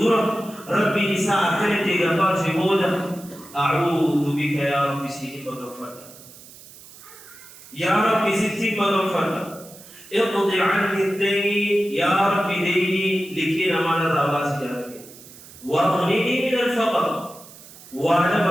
ربي إساء كنت غفار في بودة أعوذ بك يا رب سيدي مغفرنا يا رب ستي مغفرنا اقضي عني الدين يا رب ديني لكي نمان الراباس يا رب واغنني من الفقر. وانا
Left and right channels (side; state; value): right; noise; hiss, 20 dB below the sound